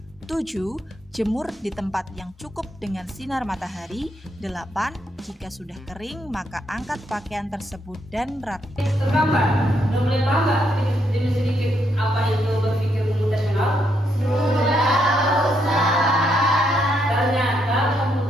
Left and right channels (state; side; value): normal; both; correlation 0.77